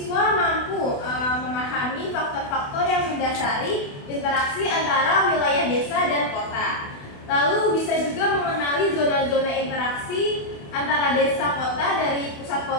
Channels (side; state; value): right; late; 28 ms